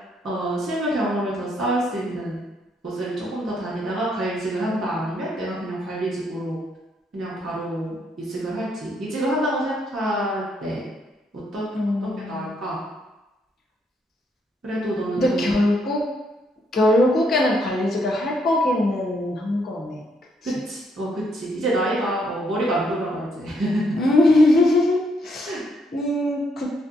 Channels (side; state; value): both; normal; correlation 0.73